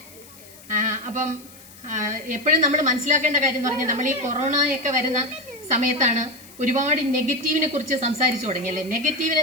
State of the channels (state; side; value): noise; left; hiss, 21 dB below the sound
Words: അപ്പം എപ്പോഴും നമ്മൾ മനസ്സിലാക്കേണ്ട കാര്യം എന്ന് പറഞ്ഞാൽ, നമ്മൾ ഈ കൊറോണയൊക്കെ വരുന്ന സമയത്താണ് ഒരുപാട് നെഗറ്റീവിനെ കുറിച്ച് സംസാരിച്ചു തുടങ്ങി അല്ലേ. നെഗറ്റീവിനെ